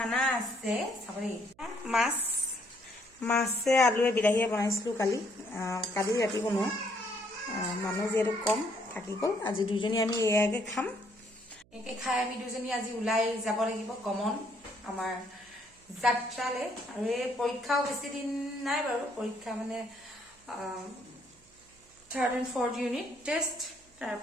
আছে চাবলি মাছে আলুৱে বিলাহীয়ে বনাইছিলো কালি ৰাতি বনোৱা মানুহ যেহেতু কম থাকি গল আজি দুজনী আমি এয়াকে খাম একে খাই আমি দুজনী আজি উলাই যাব লাগিব কমন আমাৰ যাত্ৰালে আৰু এই পৰীক্ষাও বেছি দিন নাই বাৰু পৰীক্ষা মানে 3rd and 4th unit test তাৰ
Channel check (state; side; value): noise; right; hum, 30 dB below the sound